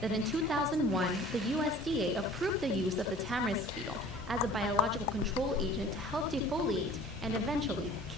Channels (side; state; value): both; normal; correlation 0.47